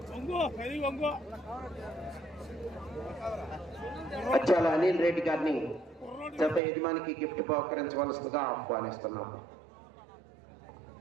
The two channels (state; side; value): drops out; left; at 6.6 s